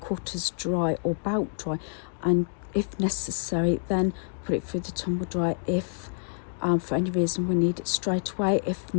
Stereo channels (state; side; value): silent; right; digital silence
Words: dry or about dry, and if necessary then put it through the tumble dryer if for any reason we need it straight away. If